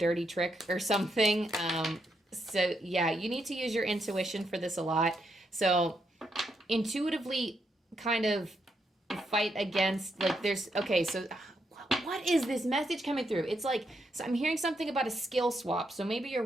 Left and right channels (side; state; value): both; normal; correlation 0.80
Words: trick or something. So yeah, you need to use your intuition for this a lot. So intuitively kind of fight against, like there's, okay, so what is this message coming through? It's like, so I'm hearing something about a skill swap. So maybe you're